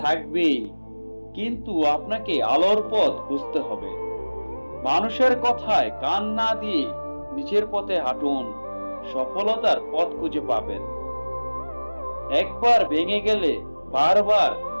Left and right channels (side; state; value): both; inverted; correlation -1.00